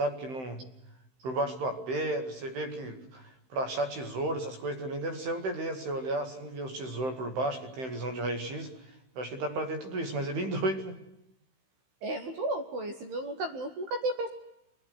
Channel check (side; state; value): left; late; 15 ms